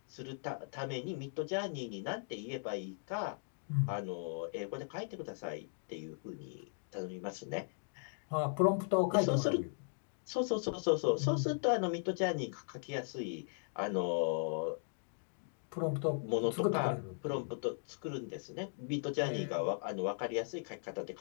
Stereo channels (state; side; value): silent; right; digital silence